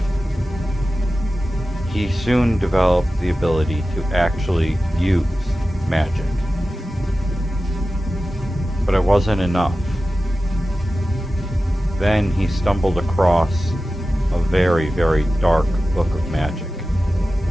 he soon developed the ability to actually use magic. But it wasn't enough. Then he stumbled across a very, very dark book of magic.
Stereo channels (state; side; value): normal; both; correlation 0.94